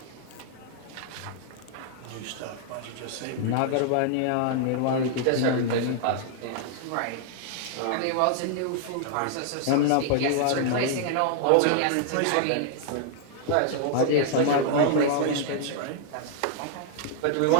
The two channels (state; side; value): different; both; correlation -0.01